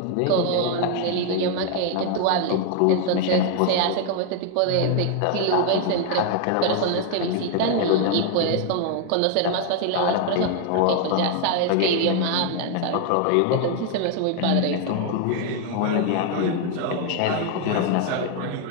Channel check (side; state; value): both; different; correlation 0.01